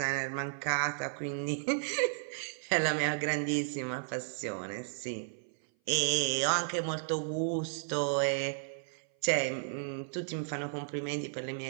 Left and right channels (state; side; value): silent; left; 55 dB below the other